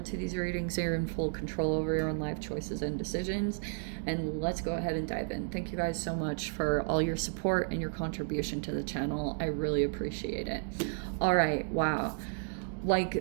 these readings. You're in full control over your own life choices and decisions. And let's go ahead and dive in. Thank you guys so much for all your support and your contribution to the channel. I really appreciate it. All right, wow.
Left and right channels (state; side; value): silent; left; 56 dB below the other